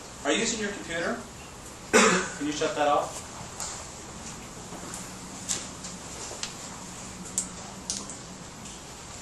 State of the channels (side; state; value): both; identical; correlation 1.00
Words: Are you using your computer? Can you shut that off?